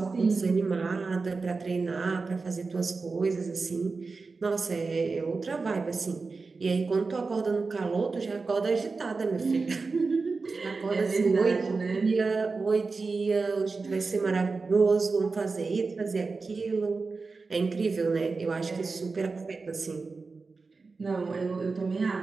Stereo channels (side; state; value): left; quieter; 4.2 dB